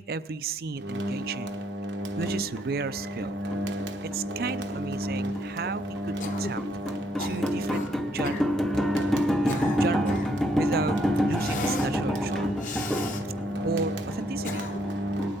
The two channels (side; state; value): both; normal; correlation 0.71